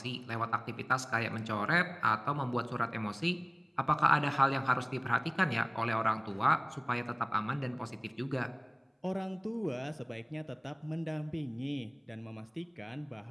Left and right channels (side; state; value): both; identical; correlation 1.00